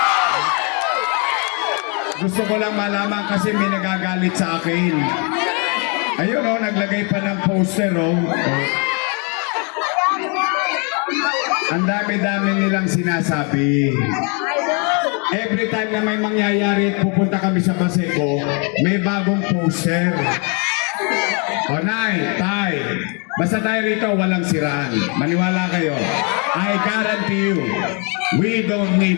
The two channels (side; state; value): right; quieter; 35.2 dB